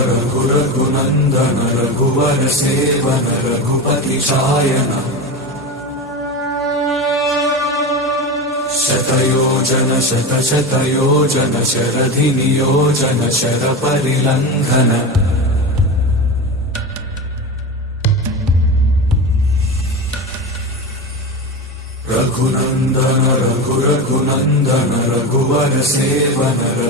रघुरघुनन्दन रघुवर सेवन रघुपति शायन शतयोजन शतशतयोजन शरधि नियोजन शरपरिलङ्घन रघुनन्दन रघुरघुनन्दन रघुवर सेवन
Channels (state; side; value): normal; both; correlation 0.22